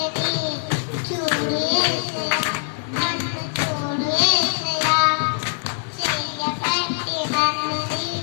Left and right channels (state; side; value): silent; right; digital silence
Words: చూడు యేసయ్యా నన్ను చూడు యేసయ్యా చెయ్యబట్టి నన్ను